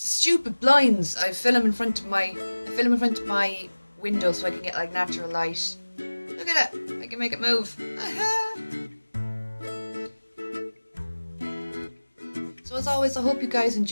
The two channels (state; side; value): inverted; both; correlation -1.00